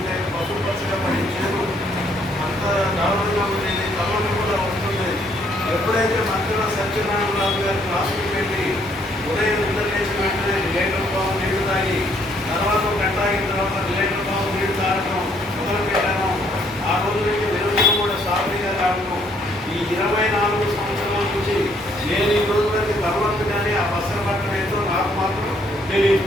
పసుపు పచ్చగా పడి చేదు అంత దారుణంగా ఉండేది, తలలు కూడా ఉంటుండేది. ఎప్పుడైతే మంత్రుల సత్యనారాయణరావు గారి క్లాసుకి వెళ్ళి ఉదయం నిద్ర లేచి వెంటనే లీటర్ పావు నీళ్లు తాగి తర్వాత గంట అయిన తర్వాత లీటర్ పావు నీళ్లు తాగడం మొదలు పెట్టాను. ఆ రోజు నుంచి వెలుగులు కూడా సాఫీగా తాగడం. ఈ 24 సంవత్సరాల నుంచి నేను ఈ రోజు వరకు తర్వాత కానీ ఆ బస్సలు పట్టడం ఏంటో నాకు మాత్రం తెలియదు.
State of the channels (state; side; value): normal; both; correlation 0.67